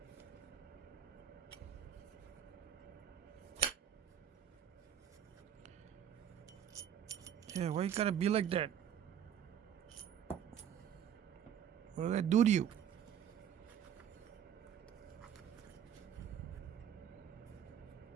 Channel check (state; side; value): quieter; left; 9.1 dB